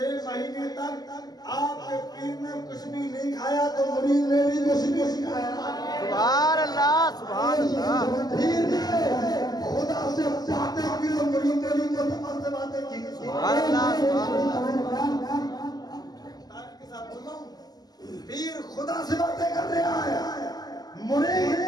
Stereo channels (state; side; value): late; right; 0.19 ms